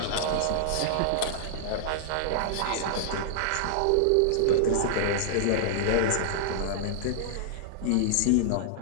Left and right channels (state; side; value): different; both; correlation -0.01